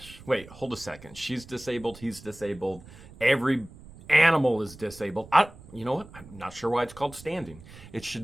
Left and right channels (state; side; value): noise; right; rumble, 19 dB below the sound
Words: Wait, hold a second. She's disabled. He's disabled. Every animal is disabled. You know what? I'm not sure why it's called standing. It